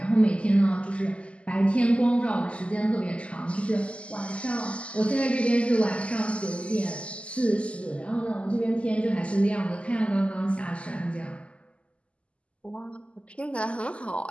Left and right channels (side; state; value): right; late; 0.057 ms